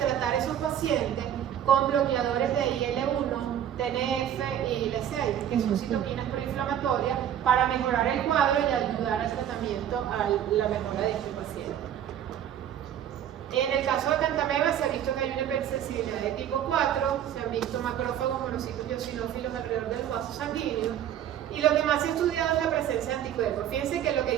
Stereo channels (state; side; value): quieter; left; 10.3 dB